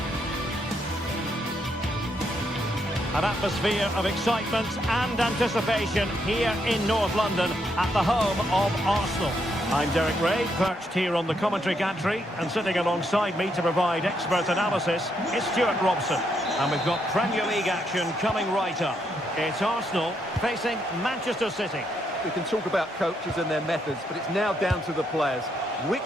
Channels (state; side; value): normal; both; correlation 0.77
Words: An atmosphere of excitement and anticipation here in North London at the home of Arsenal. I'm Derek Ray, perched here on the commentary gantry, and sitting alongside me to provide expert analysis is Stuart Robson. And we've got Premier League action coming right up. It's Arsenal facing Manchester City. We can talk about coaches and their methods, but it's now down to the players.